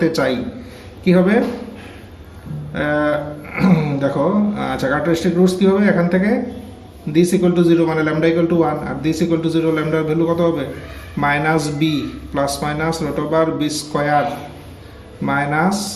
চাই কি হবে, দেখো। আচ্ছা, ক্যারেক্টারিস্টিক রুটস কি হবে? এখান থেকে দিস ইকুয়াল টু 0 মানে ল্যামডা ইকুয়াল টু 1, আর দিস ইকুয়াল টু 0 ল্যামডার ভ্যালু কত হবে? -b plus minus root over b square minus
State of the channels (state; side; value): identical; both; correlation 1.00